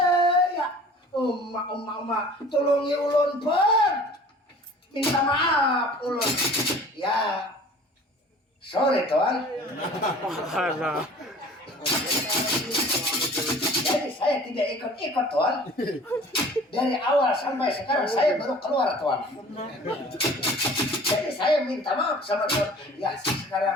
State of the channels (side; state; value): both; normal; correlation 0.47